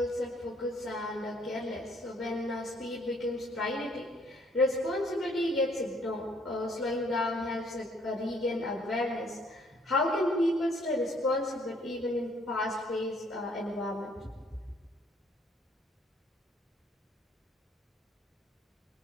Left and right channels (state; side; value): normal; both; correlation 0.63